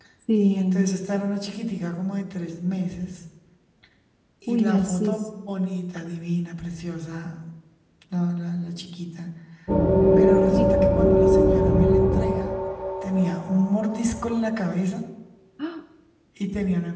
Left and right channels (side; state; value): both; identical; correlation 1.00